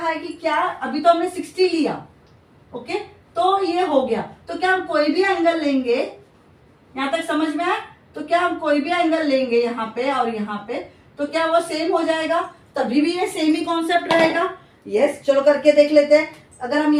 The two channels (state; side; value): identical; both; correlation 1.00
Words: है कि क्या अभी तो हमने 60 लिया, ओके, तो ये हो गया, तो क्या हम कोई भी एंगल लेंगे? यहां तक समझ में आया? तो क्या हम कोई भी एंगल लेंगे यहाँ पे और यहाँ पे, तो क्या वो सेम हो जाएगा? तभी भी ये सेम ही कॉन्सेप्ट रहेगा, यस। चलो करके देख लेते हैं। अगर हम